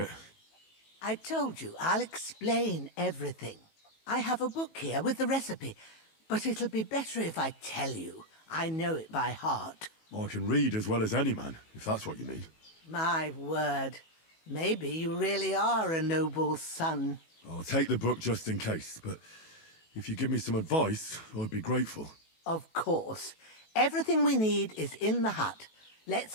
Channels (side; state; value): right; late; 18 ms